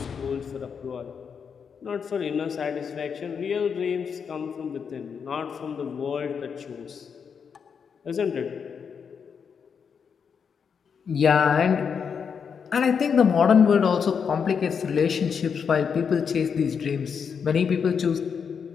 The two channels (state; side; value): quieter; right; 6.6 dB